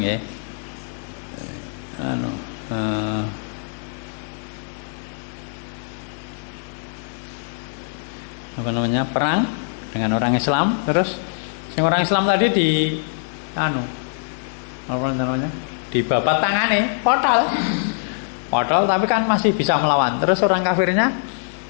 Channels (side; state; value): right; silent; 63 dB below the other